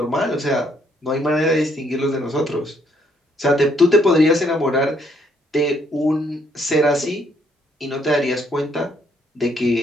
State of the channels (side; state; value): both; normal; correlation 0.69